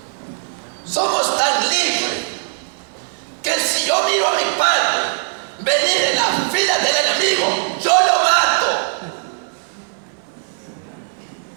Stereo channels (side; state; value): left; silent; digital silence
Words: somos tan libres que si yo miro a mi padre venir en las filas del enemigo, yo lo mato.